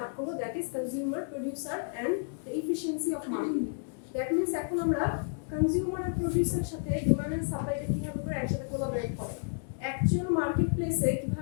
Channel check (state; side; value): silent; right; 57 dB below the other